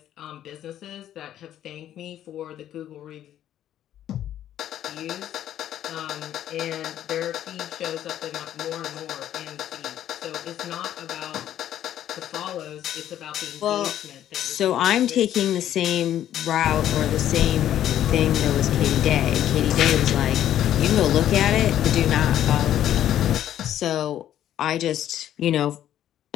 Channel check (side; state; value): right; quieter; 11.5 dB